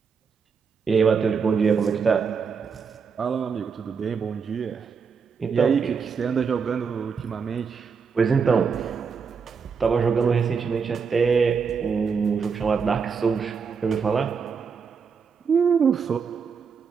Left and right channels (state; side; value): quieter; left; 5.8 dB